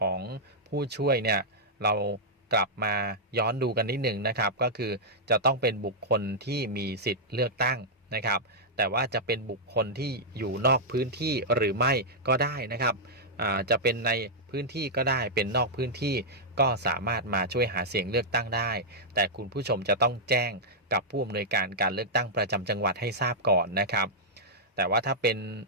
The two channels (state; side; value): normal; both; correlation -0.08